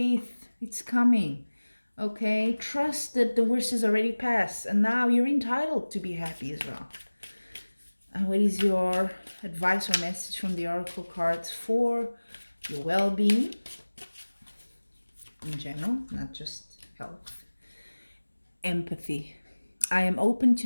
It's coming. Okay? Trust that the worst is already past. And now you're entitled to be happy as well. And what is your advice or message from the oracle cards for your well-being in general, not just health? Empathy. I am open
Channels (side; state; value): both; inverted; correlation -1.00